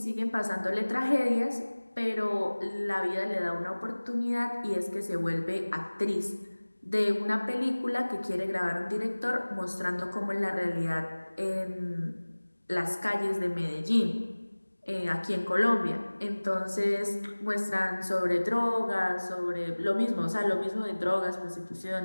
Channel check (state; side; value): inverted; both; correlation -1.00